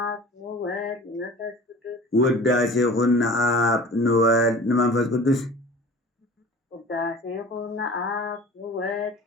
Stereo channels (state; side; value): normal; both; correlation 0.42